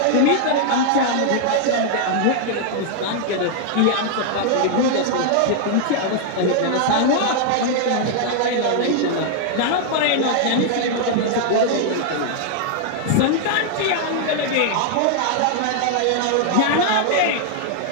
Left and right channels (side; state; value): both; different; correlation 0.00